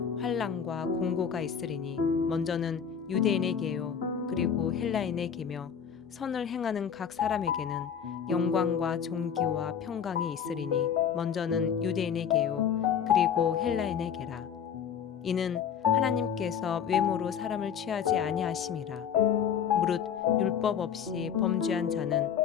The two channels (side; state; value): right; quieter; 7.8 dB